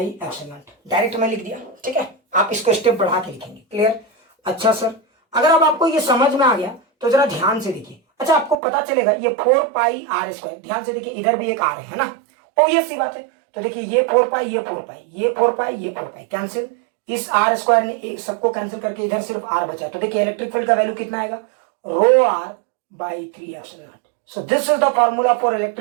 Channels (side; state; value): left; drops out; at 8.6 s